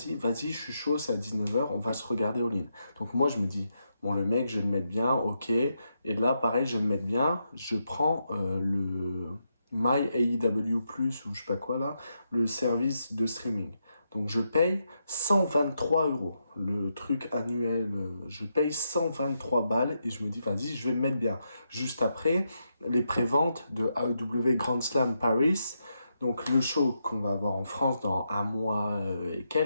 vas-y, je suis chaud, c'est à 19h, on va se regarder All In. Donc, moi, je me dis, bon, le mec, je vais le mettre bien, ok. Et là, pareil, je vais le mettre bien. Je prends le My AEW Plus, ou je sais pas quoi là, le service de streaming. Donc je paye 123 euros. Le truc annuel, je paye 123 balles et je me dis, vas-y, je vais me mettre bien. Juste après, les préventes de AEW Grand Slam Paris. Donc le show qu'on va avoir en France dans un mois et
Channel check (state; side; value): inverted; both; correlation -0.83